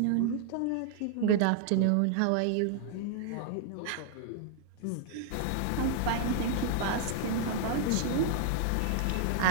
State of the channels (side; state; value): both; different; correlation 0.00